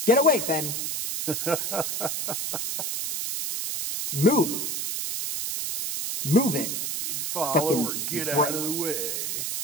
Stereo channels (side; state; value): right; noise; hiss, 2 dB below the sound